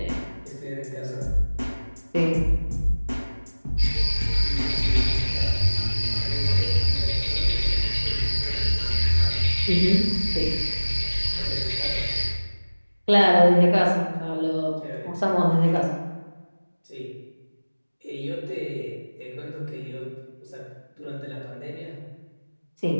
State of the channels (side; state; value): both; inverted; correlation -1.00